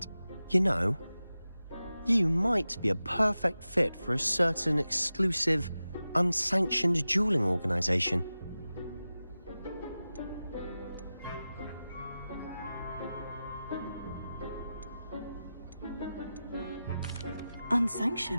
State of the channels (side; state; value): both; inverted; correlation -0.94